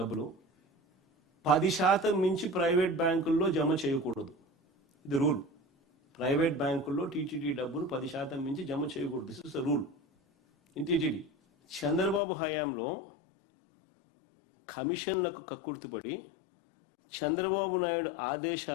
10% మించి ప్రైవేట్ బ్యాంకుల్లో జమ చేయకూడదు. ఇది రూల్. ప్రైవేట్ బ్యాంకుల్లో టీటీడీ డబ్బులు 10% మించి జమ చేయకూడదు. This is the rule in TTD. Chandrababu హయాంలో కమిషన్లకు కక్కుర్తిపడి చంద్రబాబు నాయుడు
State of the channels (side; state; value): right; drops out; at 12.2 s